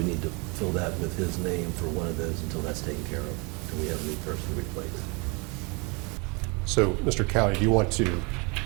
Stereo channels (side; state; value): left; quieter; 30.3 dB